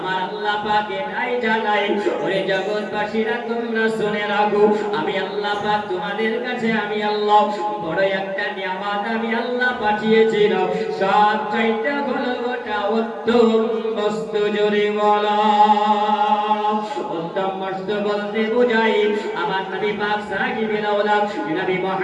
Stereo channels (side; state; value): both; identical; correlation 1.00